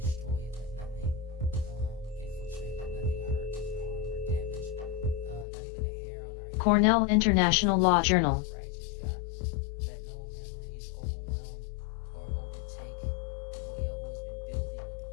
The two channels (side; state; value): right; drops out; at 5.5 s